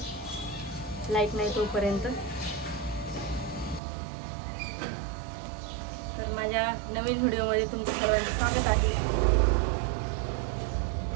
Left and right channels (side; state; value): left; drops out; at 3.8 s